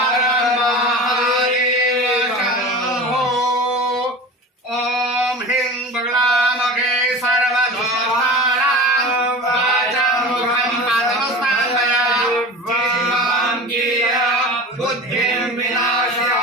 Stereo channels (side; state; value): both; normal; correlation 0.33